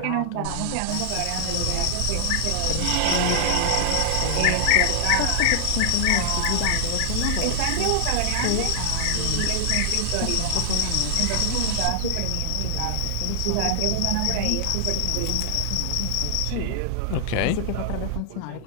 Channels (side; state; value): both; different; correlation 0.00